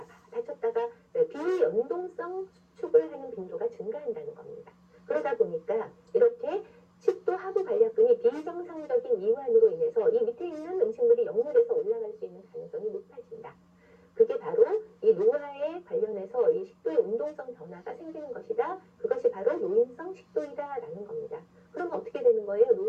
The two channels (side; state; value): both; identical; correlation 1.00